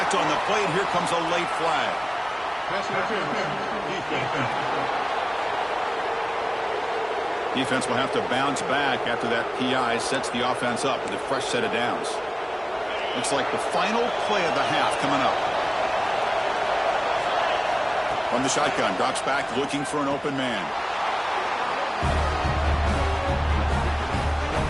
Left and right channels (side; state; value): both; identical; correlation 1.00